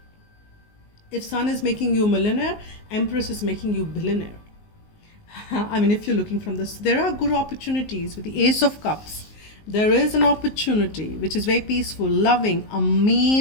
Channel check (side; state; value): right; late; 19 ms